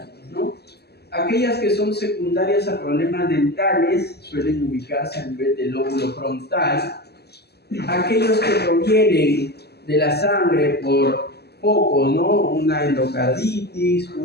¿no? Aquellas que son secundarias a problemas dentales suelen ubicarse a nivel del lóbulo frontal. Aquellos que provienen de la sangre por focos, ¿no? Una endocarditis,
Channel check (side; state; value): right; late; 0.47 ms